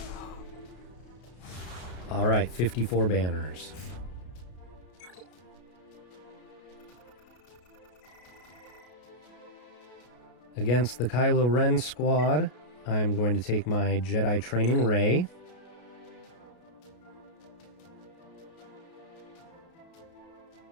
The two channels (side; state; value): right; late; 33 ms